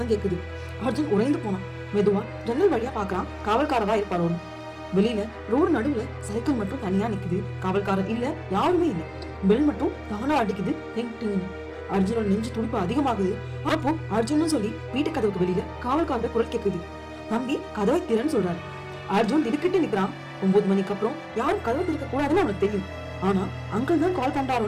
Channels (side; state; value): both; identical; correlation 1.00